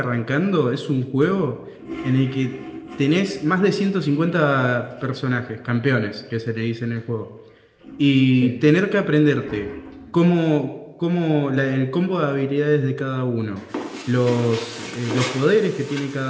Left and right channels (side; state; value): both; identical; correlation 1.00